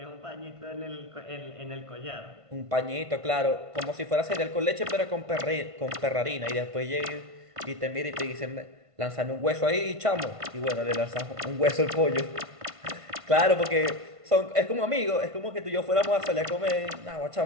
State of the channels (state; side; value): late; left; 1.5 ms